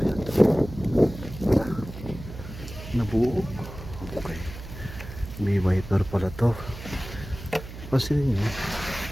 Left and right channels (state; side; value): noise; right; hum, 12 dB below the sound